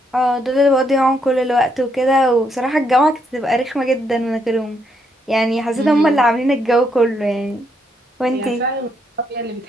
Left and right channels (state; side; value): normal; both; correlation 0.75